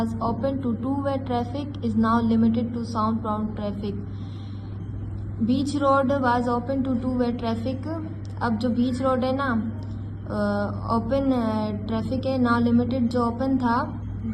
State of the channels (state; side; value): identical; both; correlation 1.00